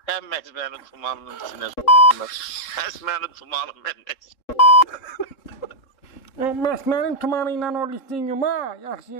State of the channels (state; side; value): late; right; 3.7 ms